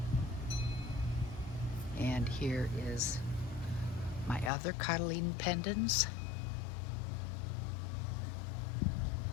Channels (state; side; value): drops out; right; at 4.5 s